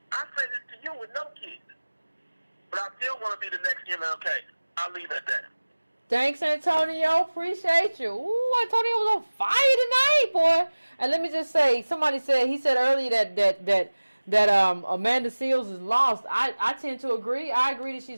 I say this to you with no kids. But I still want to be the next MLK. I'll leave it at that. Thanks, Antonio. Appreciate you. Ooh, Antonio was on fire tonight, boy. And let me just say, he said earlier that Amanda Seals is lost. I tend to agree. I agree that she's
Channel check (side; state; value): both; inverted; correlation -1.00